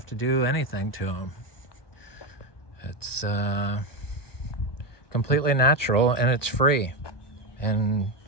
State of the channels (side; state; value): right; late; 1.2 ms